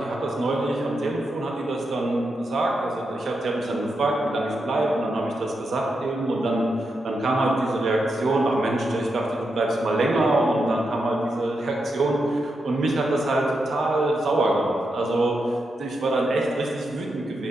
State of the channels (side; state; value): both; normal; correlation 0.85